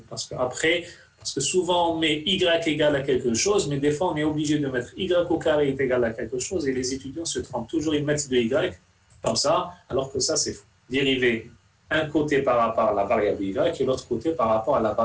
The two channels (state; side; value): identical; both; correlation 1.00